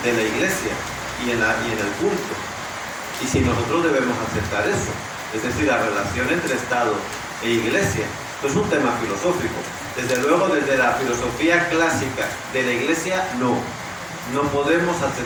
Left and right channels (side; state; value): both; identical; correlation 1.00